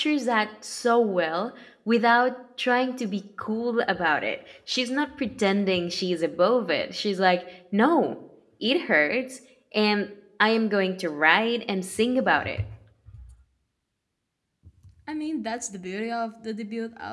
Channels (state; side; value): identical; both; correlation 1.00